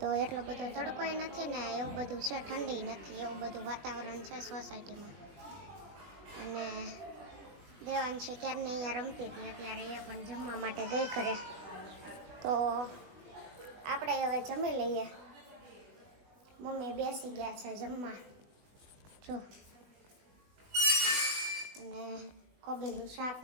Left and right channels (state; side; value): late; left; 20 ms